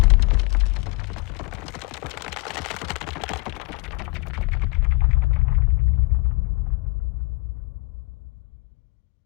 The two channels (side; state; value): right; quieter; 25.9 dB